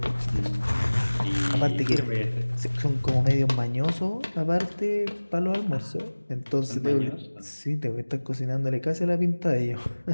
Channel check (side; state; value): both; inverted; correlation -1.00